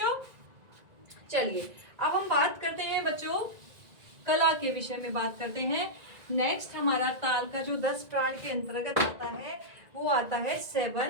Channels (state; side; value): late; left; 1.9 ms